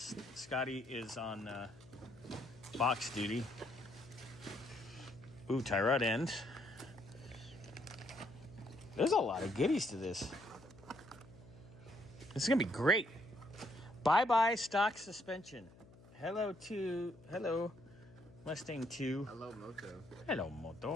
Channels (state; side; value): noise; left; hum, 22 dB below the sound